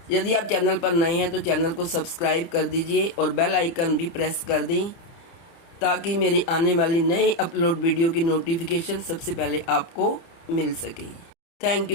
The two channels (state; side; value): late; right; 30 ms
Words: यदि आप चैनल पर नए हैं तो चैनल को सब्सक्राइब कर दीजिए और बेल आइकन भी प्रेस कर दें ताकि मेरी आने वाली नई अपलोड वीडियो की नोटिफिकेशन सबसे पहले आपको मिल सके। Thank